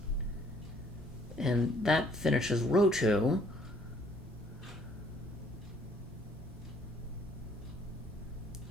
And that finishes row 2.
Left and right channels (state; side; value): normal; both; correlation 0.62